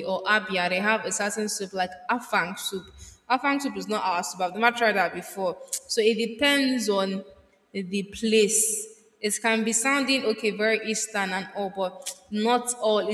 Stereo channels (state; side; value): identical; both; correlation 1.00